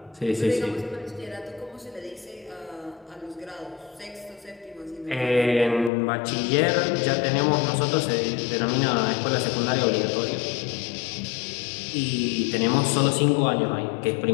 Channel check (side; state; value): right; drops out; at 5.9 s